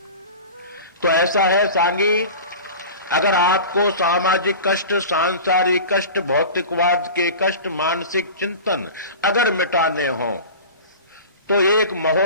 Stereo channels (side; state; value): both; inverted; correlation -0.35